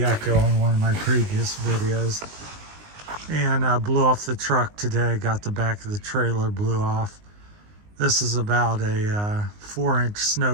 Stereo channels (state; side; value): late; left; 19 ms